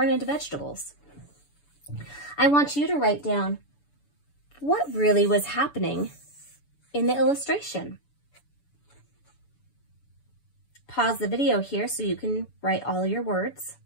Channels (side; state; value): right; late; 6.9 ms